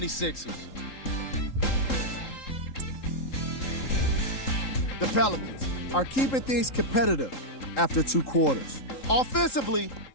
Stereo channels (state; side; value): late; right; 3.8 ms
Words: The Pelicans are keeping things competitive after 2 quarters. Offensively,